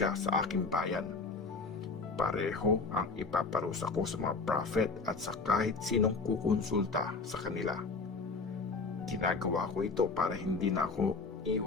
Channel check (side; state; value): right; quieter; 4.1 dB